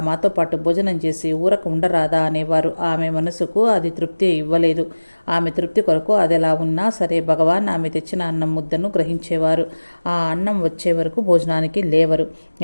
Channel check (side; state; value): both; inverted; correlation -1.00